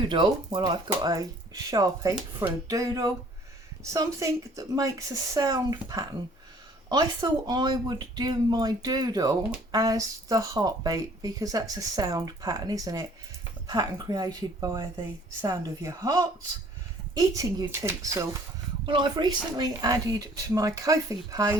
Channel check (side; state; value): both; normal; correlation 0.56